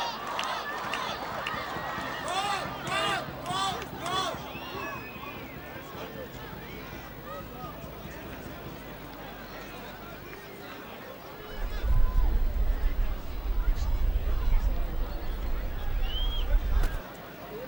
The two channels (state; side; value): normal; both; correlation 0.98